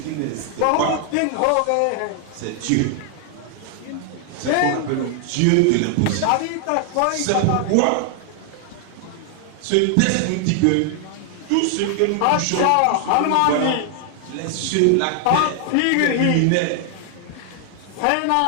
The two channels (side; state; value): both; different; correlation 0.00